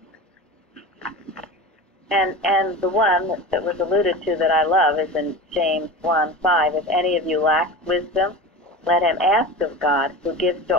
And the one that was alluded to that I love is in James 1:5. If any of you lacks wisdom, let him ask of God, who gives to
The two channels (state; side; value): normal; both; correlation 0.30